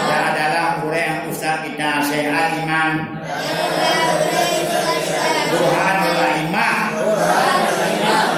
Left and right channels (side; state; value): both; identical; correlation 1.00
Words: Dan adalah guru yang ustad kita syai'al iman. Burhanul Imam